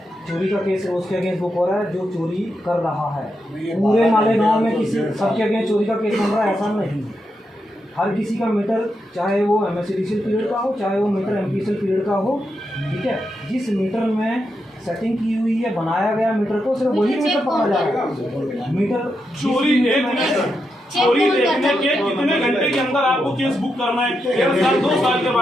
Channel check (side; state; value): both; normal; correlation 0.85